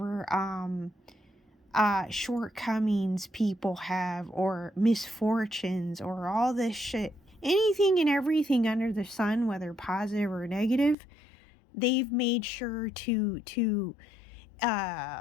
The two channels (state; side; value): drops out; right; at 11.0 s